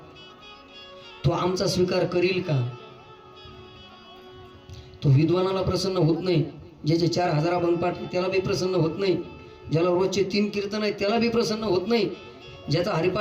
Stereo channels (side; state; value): both; identical; correlation 1.00